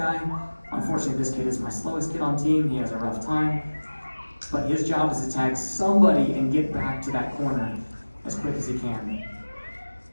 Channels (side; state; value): both; inverted; correlation -1.00